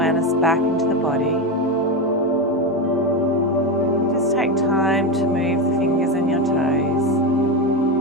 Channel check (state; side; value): normal; both; correlation 0.13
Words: back into the body. Just take time to move the fingers and your toes.